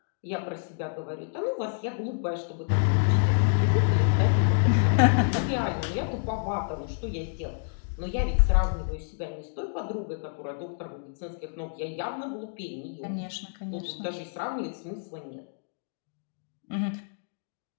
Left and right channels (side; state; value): right; silent; digital silence